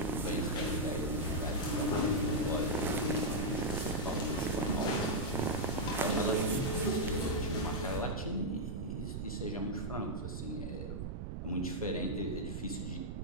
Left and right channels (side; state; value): right; noise; rumble, 5 dB below the sound